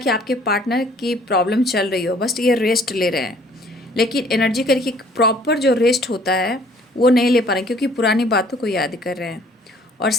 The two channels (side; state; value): both; normal; correlation 0.57